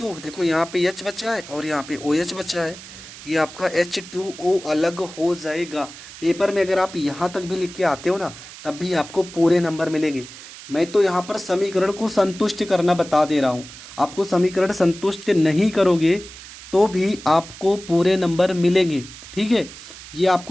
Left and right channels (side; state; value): right; noise; hiss, 16 dB below the sound